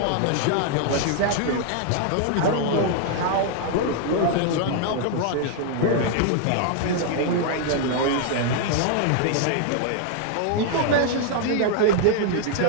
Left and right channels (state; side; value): different; both; correlation 0.00